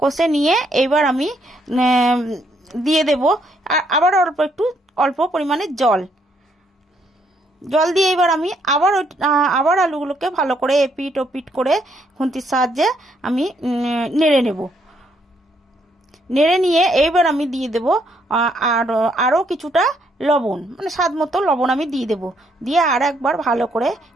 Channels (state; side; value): normal; both; correlation 0.72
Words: কষে নিয়ে এবার আমি দিয়ে দেব আবার অল্প পরিমাণে জল দিয়ে এবার আমি আবার আলুগুলোকে ভালো করে এপিট ওপিট করে খুন্তির সাহায্যে আমি নেড়ে নেব। নেড়ে নিয়ে এইবার আমি দিয়ে দেব আরও কিছুটা লবণ, মানে স্বাদ মতো লবণ আমি দিয়ে দেব। দিয়ে আর একবার ভালো করে